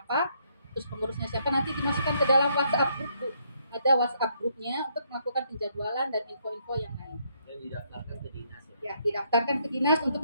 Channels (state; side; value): inverted; both; correlation -0.72